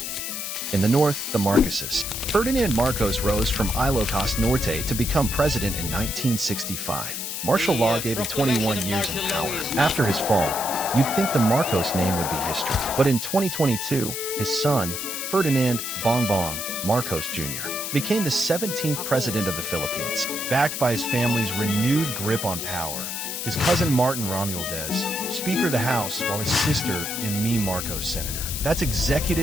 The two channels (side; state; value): left; noise; hiss, 5 dB below the sound